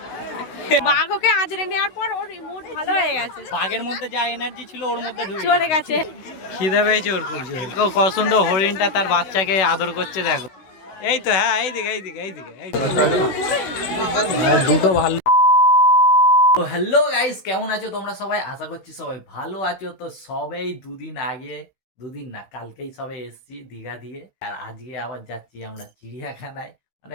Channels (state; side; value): late; right; 16 ms